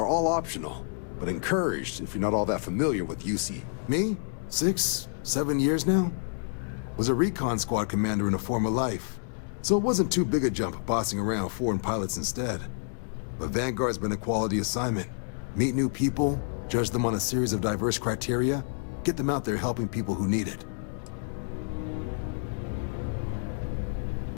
all optional, but encouraged if you're not all that familiar with UC. Me? 6, 7 years now? Was a recon squad commander in a former life, so it wasn't too big a jump bossing around foreign pilots instead. But Vanguard's been a quality assignment. Meet new people, judge them on a series of diverse criteria, get them out there helping people who need it.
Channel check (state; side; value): silent; right; digital silence